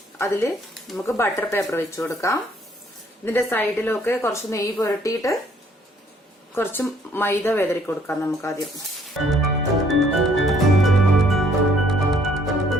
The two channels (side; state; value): both; normal; correlation 0.63